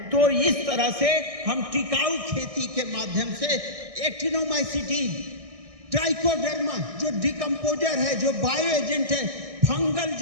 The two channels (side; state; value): left; late; 1.6 ms